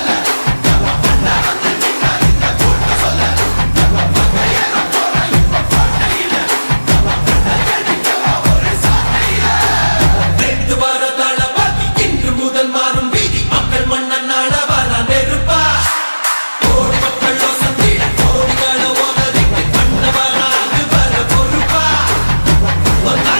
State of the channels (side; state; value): both; inverted; correlation -1.00